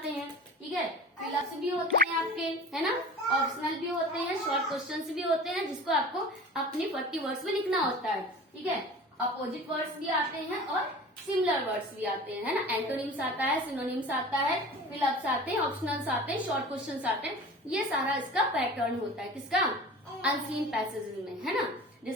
हैं. ठीक है, फिलअप्स भी होते हैं आपके, है ना, ऑप्शनल भी होते हैं, शॉर्ट क्वेश्चंस भी होते हैं जिसको आपको अपनी 40 वर्ड्स में लिखना होता है. ठीक है, अपोजिट वर्ड्स भी आते हैं और सिमिलर वर्ड्स भी आते हैं, है ना. एंटोनिम्स आता है, सिनोनिम्स आता है, फिलअप्स आते हैं, ऑप्शनल्स आते हैं, शॉर्ट क्वेश्चंस आते हैं. ये सारा इसका पैटर्न होता है, किसका, अनसीन पैसेज में, है ना.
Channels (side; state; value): both; normal; correlation 0.38